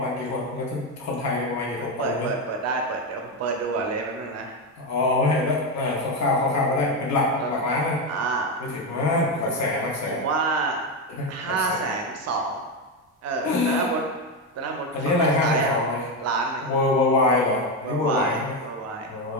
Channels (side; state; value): both; normal; correlation 0.10